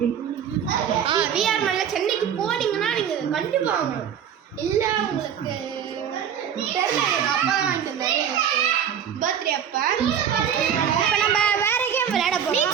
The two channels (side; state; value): left; quieter; 8.6 dB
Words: விஆர் மாலில் சென்னைக்கு போனீங்கன்னா நீங்கள் கண்டிப்பாக வாங்கணும். இல்லை உங்களுக்கு தெரியல. எங்கள் அப்பா தான் வாங்கிட்டு வந்தாரு பர்த்டே அப்போ. இப்போ நம்ம வேற கேம் விளையாட